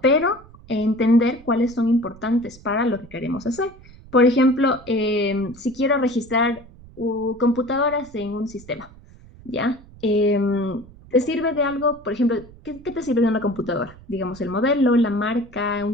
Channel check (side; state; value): right; noise; rumble, 22 dB below the sound